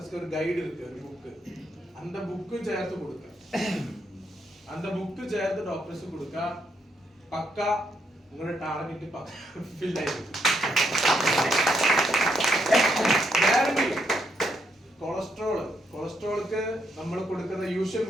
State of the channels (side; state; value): both; normal; correlation 0.77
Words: ஒரு கைடு இருக்கு ஒரு புக் அந்த புக்கு சேர்த்து கொடுக்க அந்த புக்கு சேர்த்து டாக்டர்ஸ்க்கு கொடுக்க பக்கா உங்களோட டார்கெட் ஃபில் ஆயிருக்கு கேரண்டி കൊളസ്ട്രോൾക്ക് നമ്മൾ കൊടുക്കുന്ന യൂഷ്വൽ